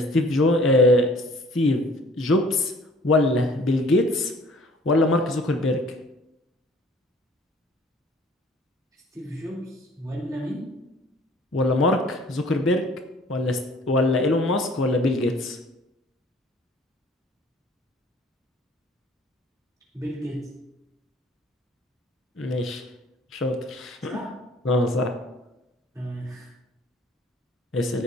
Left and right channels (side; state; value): both; normal; correlation 0.53